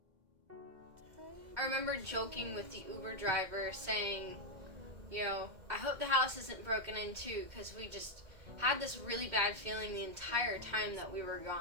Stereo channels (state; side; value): late; left; 2.1 ms